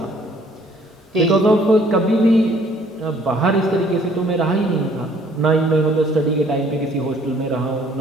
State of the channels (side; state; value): both; normal; correlation 0.59